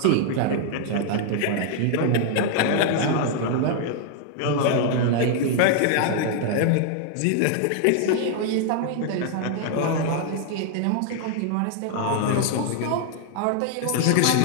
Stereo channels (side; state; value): both; different; correlation 0.00